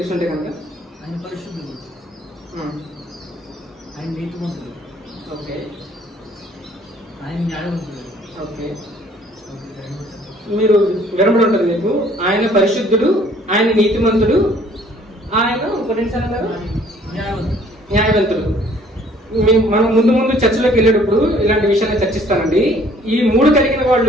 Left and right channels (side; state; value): both; normal; correlation 0.58